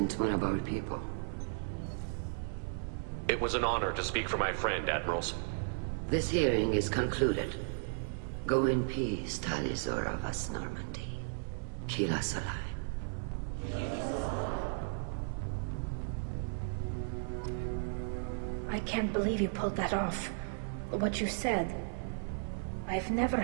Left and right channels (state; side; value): silent; left; 54 dB below the other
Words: one of our people. It was an honor to speak for my friend, Admirals. This hearing is concluded. Go in peace, Tali Zora Vas Normandy. Kila Solai. I can't believe you pulled that off. What you said. I've never